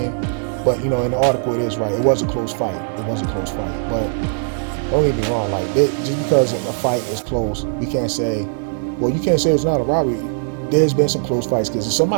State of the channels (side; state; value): left; silent; 66 dB below the other